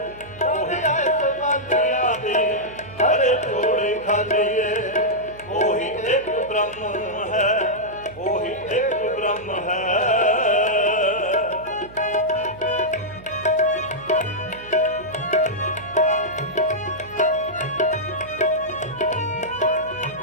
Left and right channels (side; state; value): right; noise; hum, 19 dB below the sound